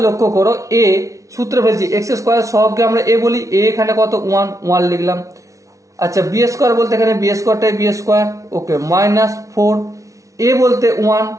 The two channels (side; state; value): left; late; 0.16 ms